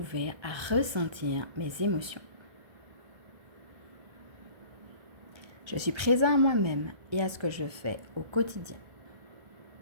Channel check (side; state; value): left; late; 1.3 ms